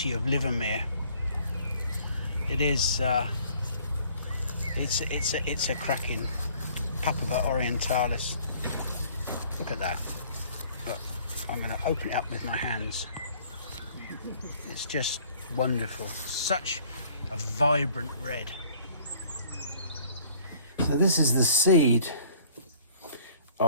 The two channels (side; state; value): both; inverted; correlation -0.55